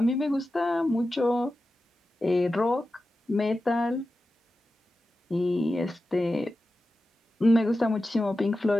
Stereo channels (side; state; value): both; normal; correlation 0.93